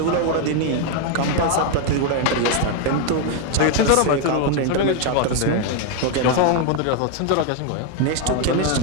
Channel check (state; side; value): different; both; correlation 0.01